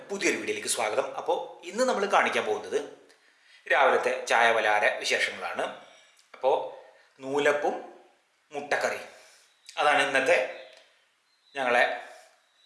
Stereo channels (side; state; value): both; identical; correlation 1.00